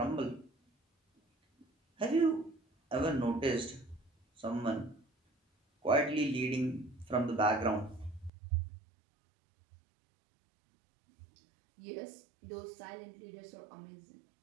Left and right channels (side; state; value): left; drops out; at 8.3 s